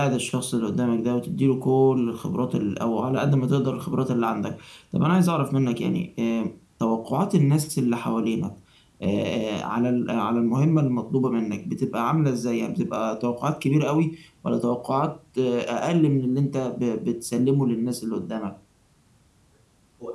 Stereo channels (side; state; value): both; identical; correlation 1.00